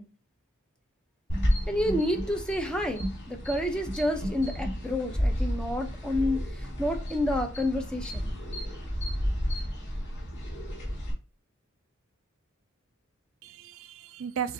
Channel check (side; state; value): both; normal; correlation 0.83